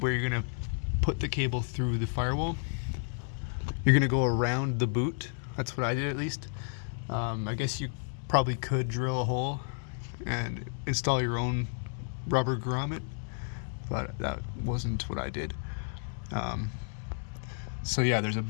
you're going to put the cable through the firewall. You're going to go around the boot. That's what I did, at least. I guess you probably could drill a hole and install your own rubber grommet, but that wasn't what I did. So yeah, there's a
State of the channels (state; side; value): silent; right; digital silence